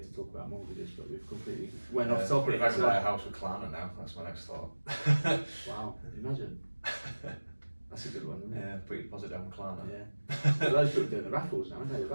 talk about mortgages, but we've completely went off topic. If I could buy a house with Klarna now, that's my next thought. Wow, imagine. That's a good one, isn't it? Yeah, put your deposit down with Klarna. Yeah. Those people doing the raffles now, aren't they? They're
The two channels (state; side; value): inverted; both; correlation -1.00